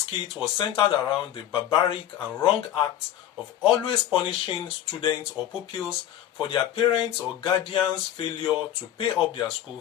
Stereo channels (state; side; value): quieter; right; 11.7 dB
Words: was centered around the barbaric and wrong act of always punishing students or pupils for their parents' or guardians' failure to pay up their school